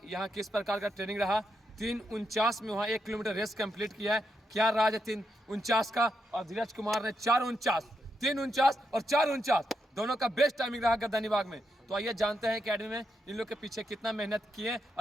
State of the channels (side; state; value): both; normal; correlation 0.82